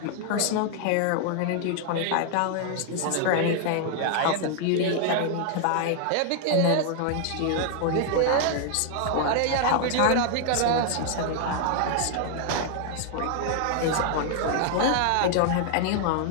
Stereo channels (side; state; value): both; different; correlation 0.00